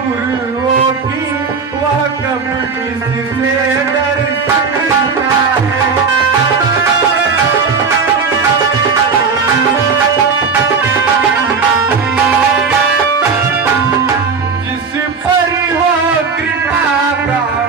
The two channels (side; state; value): left; quieter; 5.2 dB